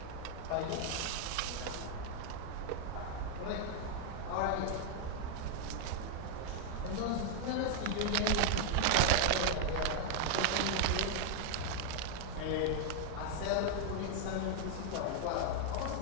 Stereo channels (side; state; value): both; different; correlation 0.00